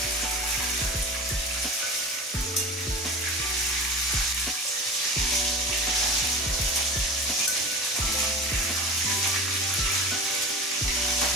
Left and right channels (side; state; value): both; normal; correlation 0.34